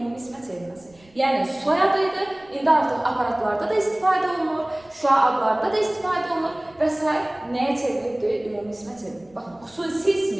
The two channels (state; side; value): noise; right; rumble, 30 dB below the sound